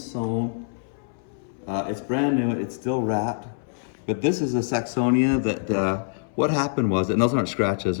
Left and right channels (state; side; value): silent; right; 60 dB below the other